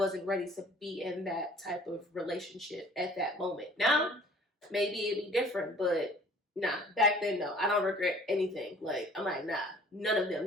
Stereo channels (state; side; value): normal; both; correlation 0.52